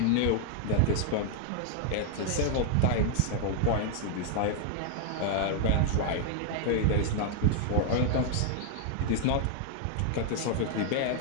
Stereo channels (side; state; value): both; different; correlation -0.01